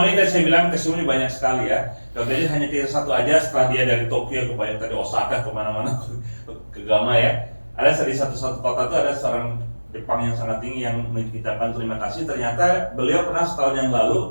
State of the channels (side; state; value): both; inverted; correlation -1.00